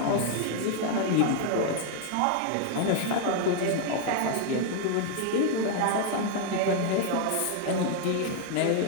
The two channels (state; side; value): different; both; correlation 0.00